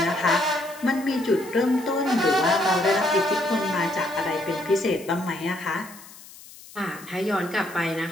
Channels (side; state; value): left; noise; hiss, 19 dB below the sound